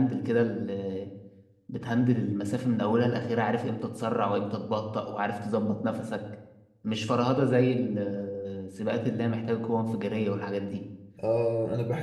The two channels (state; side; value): identical; both; correlation 1.00